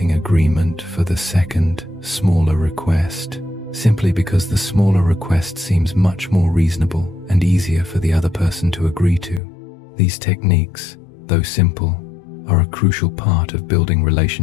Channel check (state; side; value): drops out; right; at 9.4 s